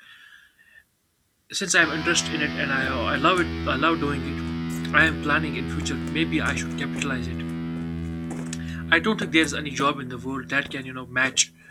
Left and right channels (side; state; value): both; identical; correlation 1.00